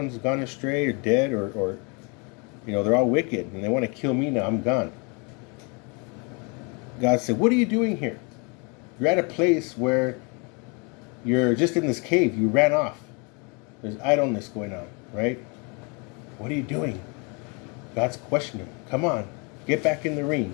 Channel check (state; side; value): quieter; right; 32.7 dB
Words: gone astray or dead or they're all wicked and they want to kill me now. I'm gone. God said, "What are you doing here? You're at a place where you're just in this cave. You ran off. There's idleness going on, right? What are you doing?" God's questioning. Come on, get back in the ring,